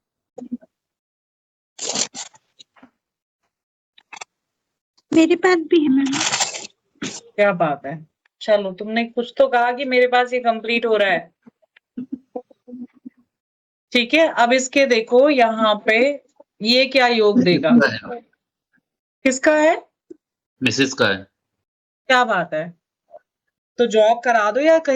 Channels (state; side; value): identical; both; correlation 1.00